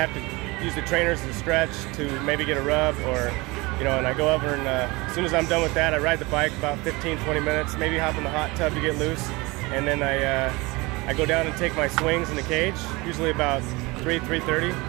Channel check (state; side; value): quieter; left; 23.9 dB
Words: to use the trainers to stretch to maybe get a rub, or and I go over, and as soon as I'm done with that, I ride the bike about 15-20 minutes, maybe hop in the hot tub to get loose, and then I go down and take my swings in the cage, usually about 3:30,